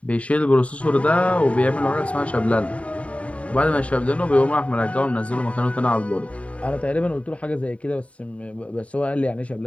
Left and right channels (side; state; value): right; late; 0.066 ms